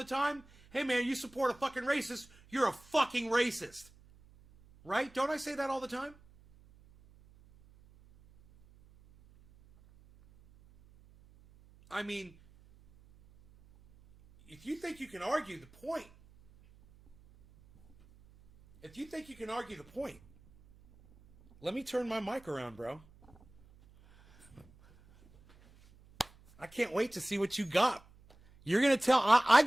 time? Hey man, you support a fucking racist, you're a fucking racist. Right? Don't I say that all the time? I mean, if you think you can argue the point, let me turn my mic around, bro. I can't wait to see what you got. You're going to tell, I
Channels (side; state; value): right; noise; hum, 26 dB below the sound